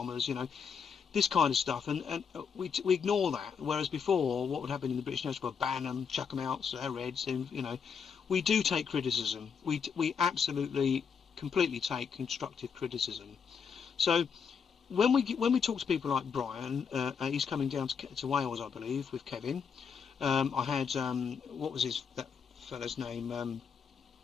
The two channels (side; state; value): right; quieter; 6.5 dB